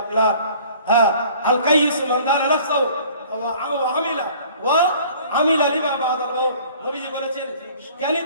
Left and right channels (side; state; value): both; inverted; correlation -0.51